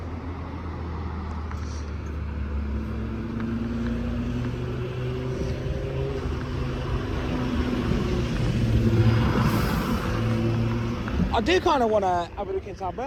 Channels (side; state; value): both; identical; correlation 1.00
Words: I do kind of want to have a look into our